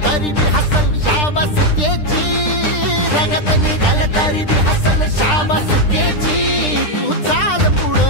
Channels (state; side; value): late; right; 9.9 ms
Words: तरी बी हसल शाबास त्याची, रगत निघल तरी बी हसल शाबास त्याची। तू चाल